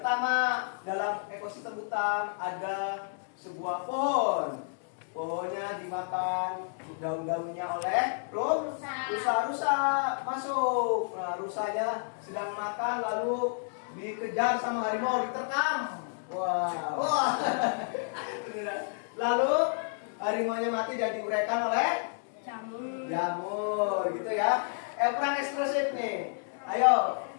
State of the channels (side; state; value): right; silent; digital silence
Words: dalam ekosistem hutan ada sebuah pohon. Pohonnya dimakan daun-daunnya oleh rusa masuk. Nah, rusanya sedang makan lalu dikejar sama harimau, diterkam. Wah. Lalu harimaunya mati dan diuraikan oleh jamur gitu ya. Peran ekspresif nih. Ayo.